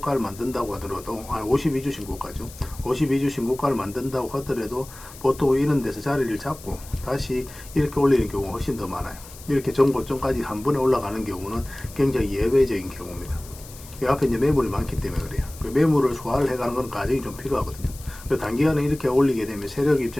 만든다고 하더라도 52주 신고가죠. 52주 신고가를 만든다고 하더라도 보통 이런 데서 자리를 잡고 다시 이렇게 올리는 경우가 훨씬 더 많아요. 이렇게 전고점까지 한 번에 올라가는 경우는 굉장히 예외적인 경우입니다. 이 앞에 이제 매물이 많기 때문에 그래요. 그 매물을 소화를 해가는 건 과정이 좀 필요하거든요. 단기간에 이렇게 올리게 되면 세력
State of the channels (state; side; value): noise; left; hiss, 18 dB below the sound